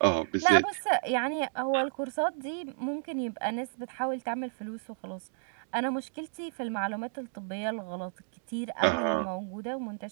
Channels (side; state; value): left; silent; digital silence